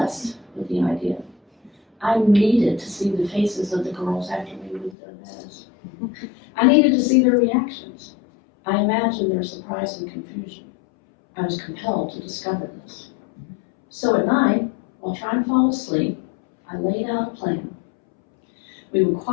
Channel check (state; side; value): drops out; right; at 5.0 s